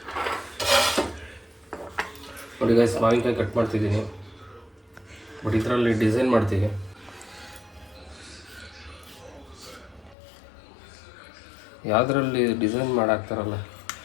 ನೋಡಿ ಗೈಸ್, ಮಾವಿನಕಾಯಿ ಕಟ್ ಮಾಡ್ತಿದ್ದೀನಿ, ಬಟ್ ಇದರಲ್ಲಿ ಡಿಸೈನ್ ಮಾಡ್ತೀವಿ. ಯಾವುದರಲ್ಲಿ ಡಿಸೈನ್ ಮಾಡಾಕ್ತಾರಲ್ಲ,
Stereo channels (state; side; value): drops out; right; at 10.2 s